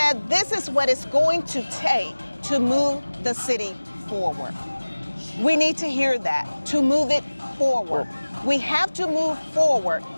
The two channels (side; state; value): both; inverted; correlation -1.00